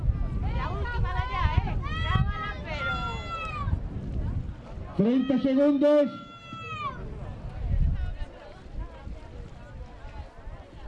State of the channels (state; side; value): identical; both; correlation 1.00